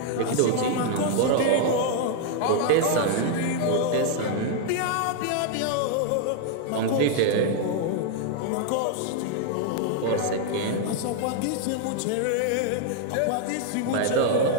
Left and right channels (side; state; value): both; different; correlation 0.00